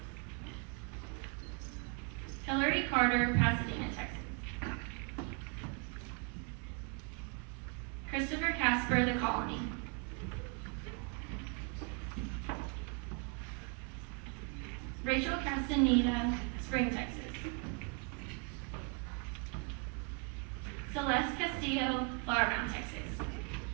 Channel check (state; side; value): quieter; left; 32.2 dB